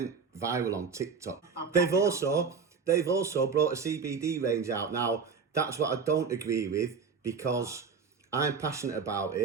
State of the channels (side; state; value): left; quieter; 5.6 dB